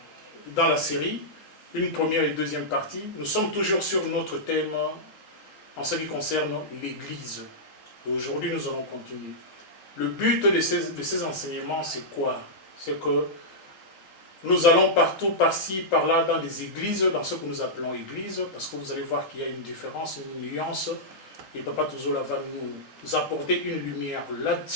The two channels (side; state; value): right; late; 3.8 ms